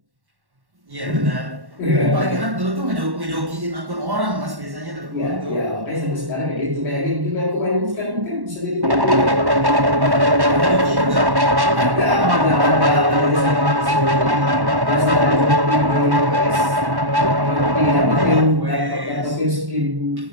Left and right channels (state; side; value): late; left; 1.1 ms